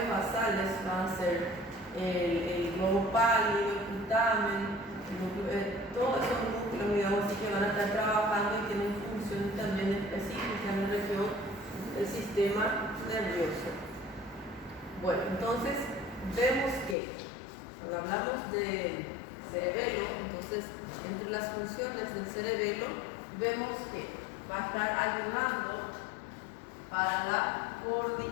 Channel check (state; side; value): drops out; right; at 16.9 s